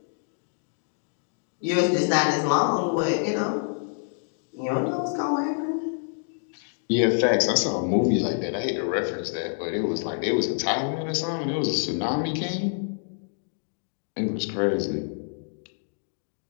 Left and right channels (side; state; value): right; silent; digital silence